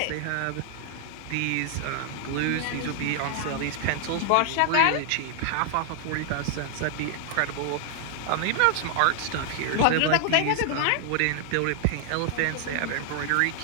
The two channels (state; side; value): different; both; correlation 0.00